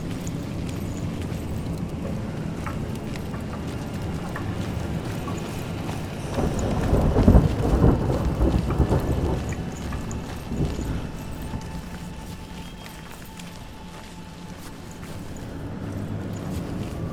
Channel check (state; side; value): identical; both; correlation 1.00